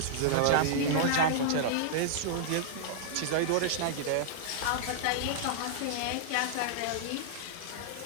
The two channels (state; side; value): different; both; correlation -0.02